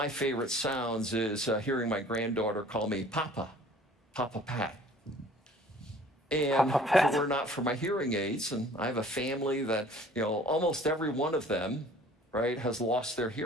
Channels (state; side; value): normal; both; correlation 0.51